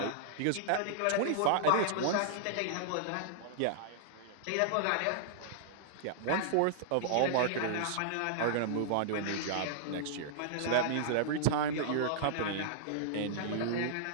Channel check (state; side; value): different; both; correlation -0.01